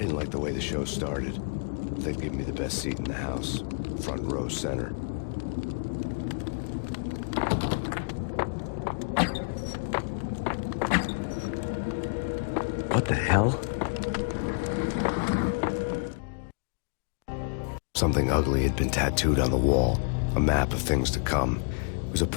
didn't like the way the show started. They'd give me the best seat in the house, front row center. What the hell? Something ugly had been tattooed on the wall, a map of things to come. It was a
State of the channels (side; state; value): right; quieter; 38.6 dB